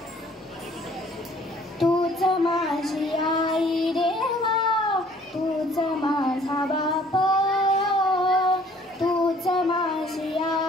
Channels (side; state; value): both; normal; correlation 0.57